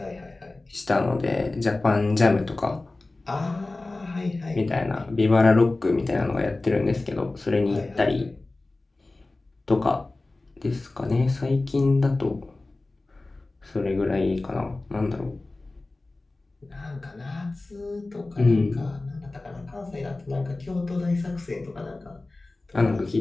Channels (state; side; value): quieter; right; 3.1 dB